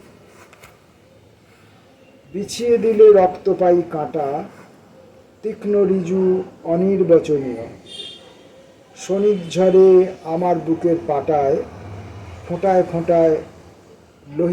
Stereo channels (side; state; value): both; identical; correlation 1.00